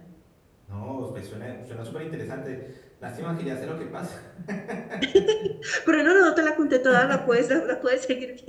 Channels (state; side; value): identical; both; correlation 1.00